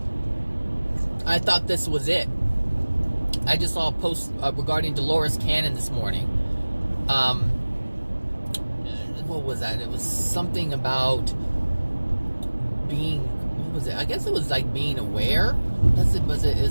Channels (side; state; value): both; inverted; correlation -1.00